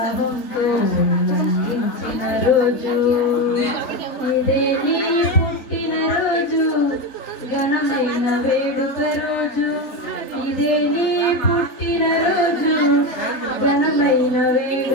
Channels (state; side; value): late; right; 3.7 ms